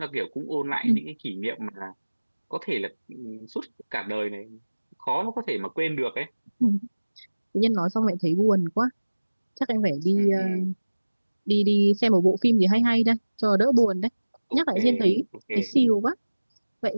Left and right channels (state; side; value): inverted; both; correlation -1.00